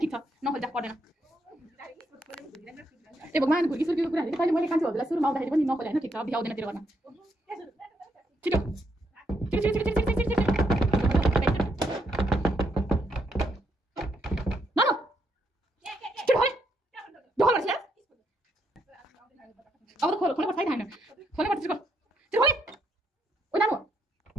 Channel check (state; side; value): normal; both; correlation 0.76